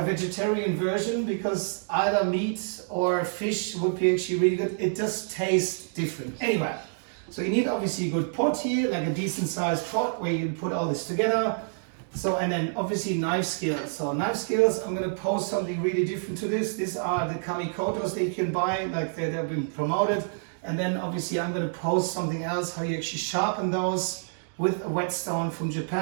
vegetarian version, because either meat or fish would be actually really good. It just tastes different. Anyway, So you need obviously a good pot here, like a decent sized pot where you can put all this together. So, and then obviously knife skills. So knife skills, I'm gonna post something really different to this. These are the Kamikotos that you can buy, like they've been promoted. And then obviously I'm gonna post something else, how you actually sharpen those with a whetstone from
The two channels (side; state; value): left; silent; digital silence